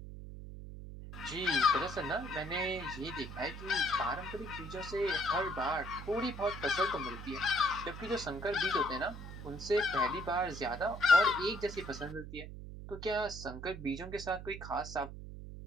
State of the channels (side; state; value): right; noise; hum, 11 dB below the sound